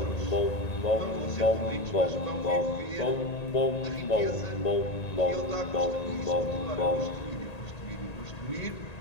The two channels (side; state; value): right; late; 1.8 ms